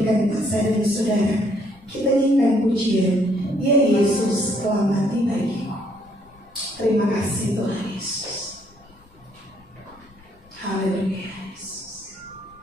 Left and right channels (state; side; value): noise; left; rumble, 27 dB below the sound